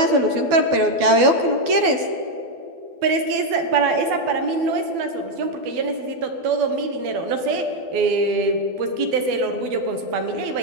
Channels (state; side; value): late; left; 12 ms